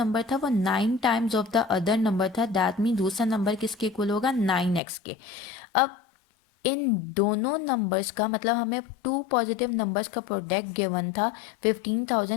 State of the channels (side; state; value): right; drops out; at 4.8 s